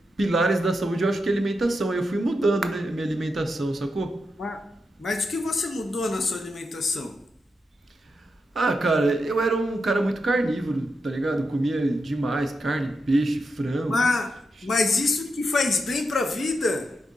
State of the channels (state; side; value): normal; both; correlation 0.86